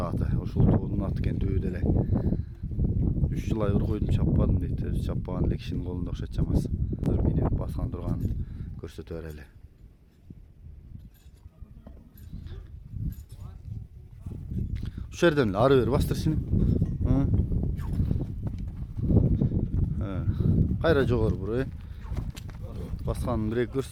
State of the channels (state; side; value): identical; both; correlation 1.00